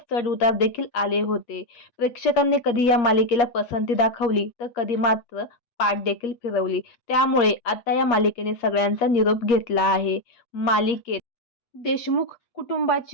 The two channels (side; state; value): right; late; 8.5 ms